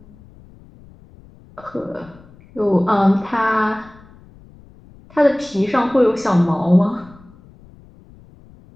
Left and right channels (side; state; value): left; noise; rumble, 25 dB below the sound